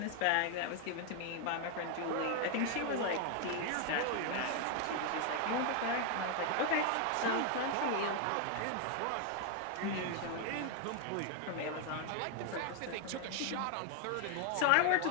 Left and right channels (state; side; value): different; both; correlation 0.00